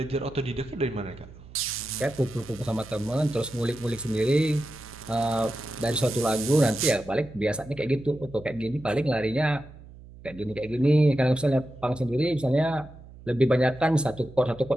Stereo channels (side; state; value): right; noise; hum, 19 dB below the sound